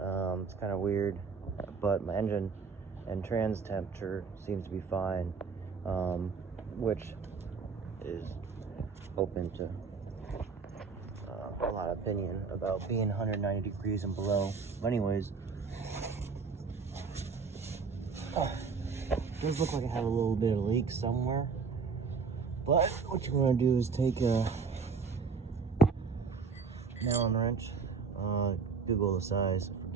kind of weird, but my engine and trans temperature seems to be fine, which is open to a lot of opinion about being 190 degrees and below. But anyways, does look like I have a little bit of leak somewhere, but what you're going to do is take a Allen wrench, Google the size, I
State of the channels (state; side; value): quieter; left; 5.1 dB